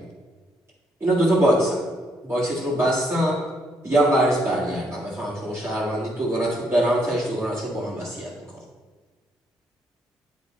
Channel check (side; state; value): both; normal; correlation 0.73